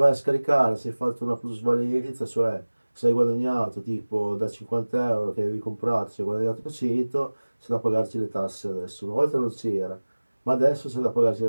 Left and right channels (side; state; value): both; inverted; correlation -1.00